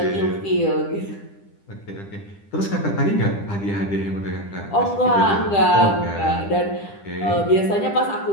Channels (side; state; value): right; late; 10 ms